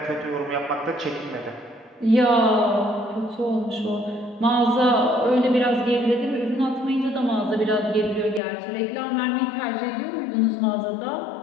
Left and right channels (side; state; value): right; drops out; at 8.4 s